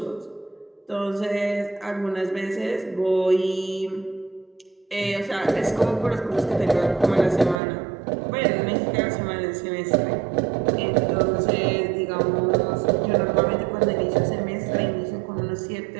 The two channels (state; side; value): drops out; left; at 7.6 s